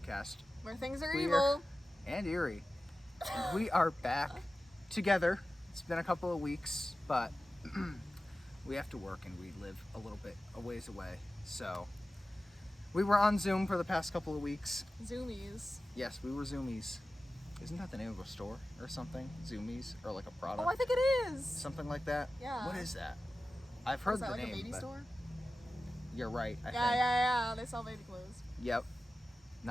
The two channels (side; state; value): both; normal; correlation 0.95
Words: Where things are We evil. And eerie. And we are back together. It's been a couple of weeks, but we have to work and we live a little bit a ways away. So we were on Zoom for the past couple of weeks. Zoomies. Yes, we were Zoomies. Isn't that the name of a store or something? Zoomies? Or like a product? Oh, I think it is. Something like that? Yeah. What is that? I've heard Is that the like name. a baby but store? You're right, I think. Yeah. They sell baby clothes. Yep.